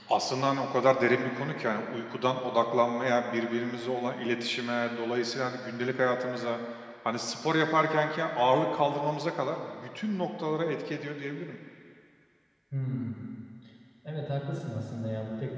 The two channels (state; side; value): identical; both; correlation 1.00